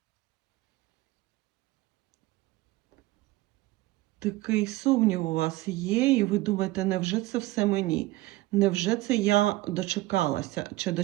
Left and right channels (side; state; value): left; quieter; 18.5 dB